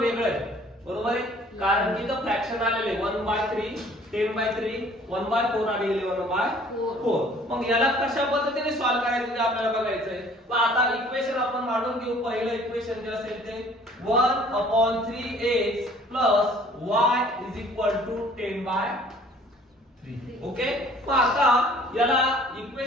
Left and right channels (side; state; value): both; normal; correlation 0.54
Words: आहे, बरोबर आहे, कारण की इथं फ्रॅक्शन आलेले 1/3, 10/3, 1/4 आणि 11/4. मग याला कशा पद्धतीने सॉल्व्ह करायचं ते आपल्याला बघायचंय. मग आता इक्वेशन आपण मांडून घेऊ. पहिलं इक्वेशन जे असेल ते 1/3x + y = 10/3. ओके. मग आता याला